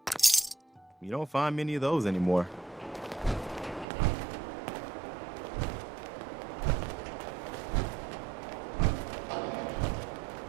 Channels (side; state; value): left; drops out; at 3.9 s